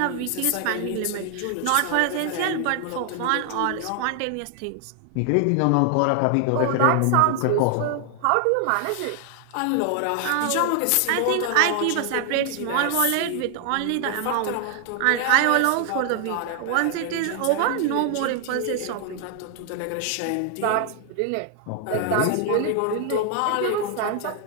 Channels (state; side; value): different; both; correlation 0.00